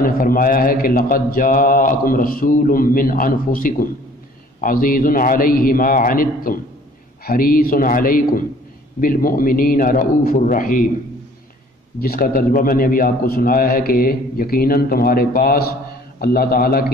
نے فرمایا ہے کہ لَقَدْ جَاءَكُمْ رَسُولٌ مِّنْ أَنفُسِكُمْ عَزِيزٌ عَلَيْهِ مَا عَنِتُّمْ حَرِيصٌ عَلَيْكُمْ بالمؤمنین رؤوف الرحیم، جس کا ترجمہ میں نے ابھی آپ کو سنایا ہے کہ یقیناً تمہارے پاس اللہ تعالیٰ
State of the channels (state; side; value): normal; both; correlation 0.53